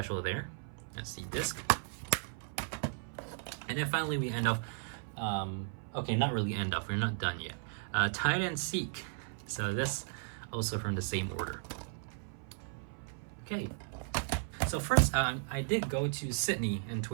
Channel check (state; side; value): silent; left; 54 dB below the other